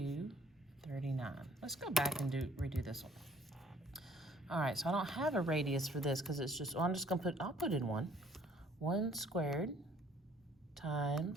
Let's go back and redo this one. All right, so I don't have a radius for this because it's just, well, I'm just gonna put, I'll put in 1. 1 squared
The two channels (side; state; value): both; normal; correlation 0.58